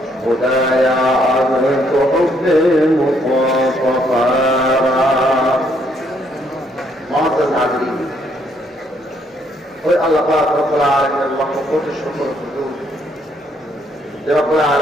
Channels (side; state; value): both; normal; correlation 0.70